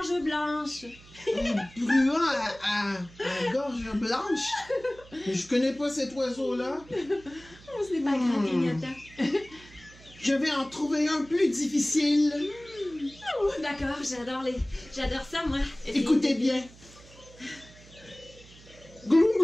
blanche. Un bruant à gorge blanche? Mais je connais pas cet oiseau-là. Oh, ce n'est pas grave, Grignotin. Je vais en trouver un plus difficile. Oh, d'accord, j'adore ça, moi. Écoutez bien. Gloum,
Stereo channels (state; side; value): noise; right; hum, 22 dB below the sound